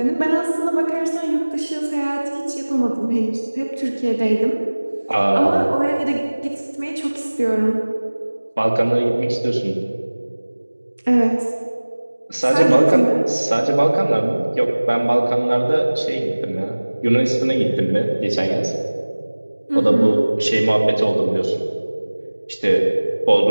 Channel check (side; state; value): both; inverted; correlation -1.00